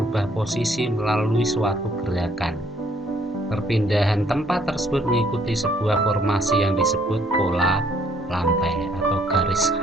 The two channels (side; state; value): both; normal; correlation 0.65